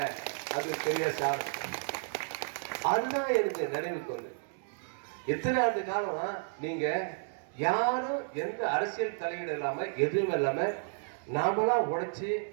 அது பெரிய சார். அதுதான் எனக்கு நினைவுக்கு வந்து எத்தனை ஆண்டு காலம் நீங்க யாரும் எந்த அரசியல் தலையீடு இல்லாம எதுவும் இல்லாம நாமளா உழைச்சி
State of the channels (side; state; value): left; silent; digital silence